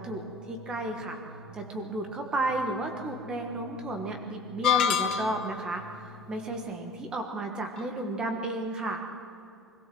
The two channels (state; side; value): normal; both; correlation 0.44